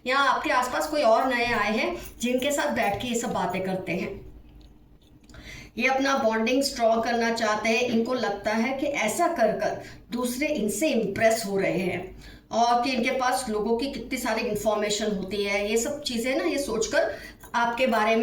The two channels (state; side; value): identical; both; correlation 1.00